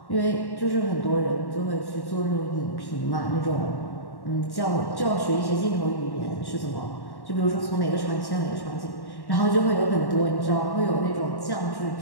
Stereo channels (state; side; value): late; right; 1.1 ms